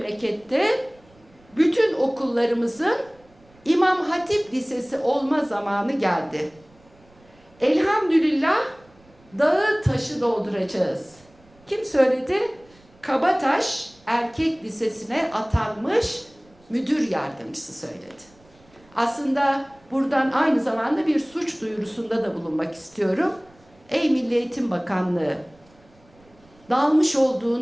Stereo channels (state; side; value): noise; right; rumble, 29 dB below the sound